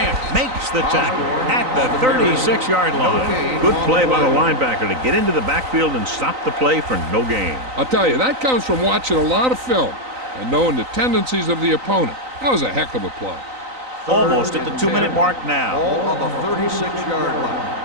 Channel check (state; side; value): late; left; 3.9 ms